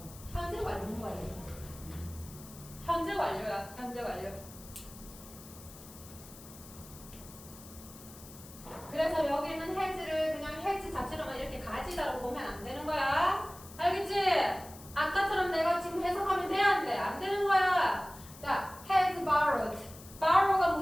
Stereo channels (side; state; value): left; noise; hiss, 18 dB below the sound